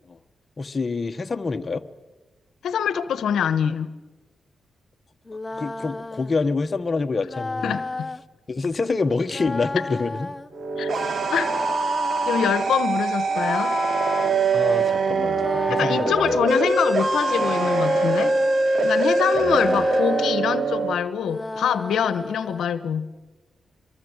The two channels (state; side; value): normal; both; correlation 0.79